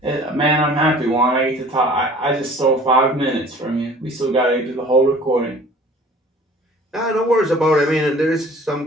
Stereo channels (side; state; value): both; normal; correlation 0.48